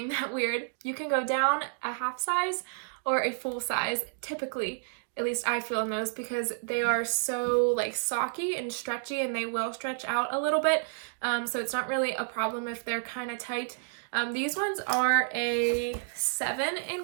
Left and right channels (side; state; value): left; silent; digital silence